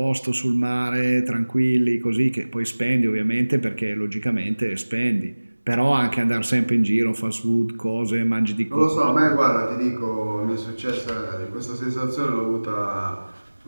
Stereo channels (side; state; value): both; inverted; correlation -1.00